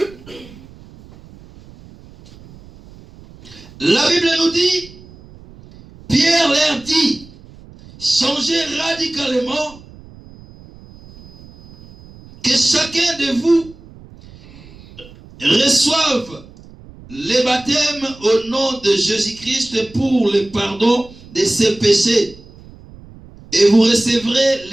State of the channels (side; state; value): right; noise; rumble, 21 dB below the sound